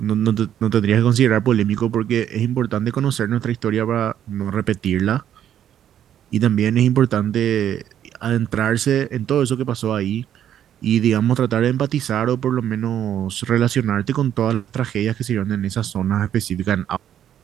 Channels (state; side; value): quieter; left; 10.3 dB